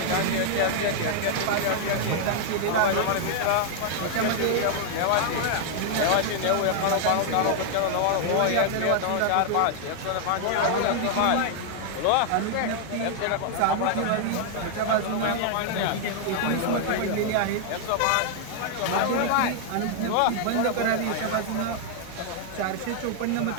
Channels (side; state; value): both; different; correlation 0.00